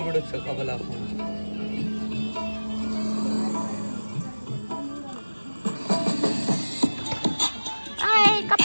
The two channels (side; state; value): both; inverted; correlation -1.00